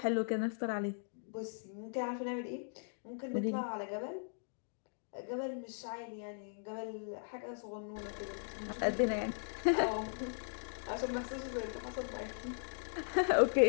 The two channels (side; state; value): right; silent; digital silence